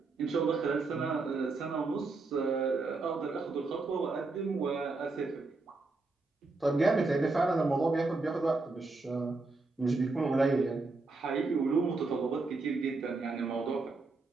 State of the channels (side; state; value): left; quieter; 3.6 dB